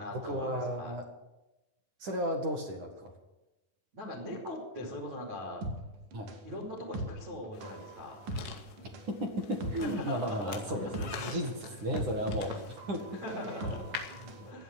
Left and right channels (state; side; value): late; left; 9.8 ms